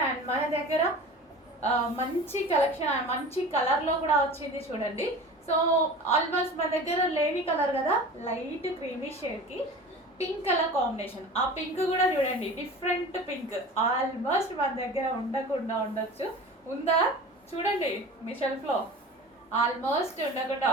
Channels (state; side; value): normal; both; correlation 0.37